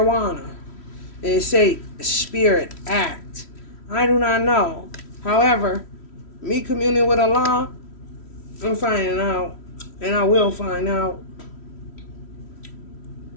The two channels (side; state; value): right; late; 3.1 ms